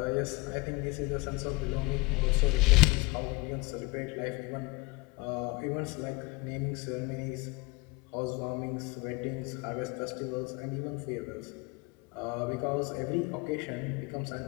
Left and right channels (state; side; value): quieter; right; 24.8 dB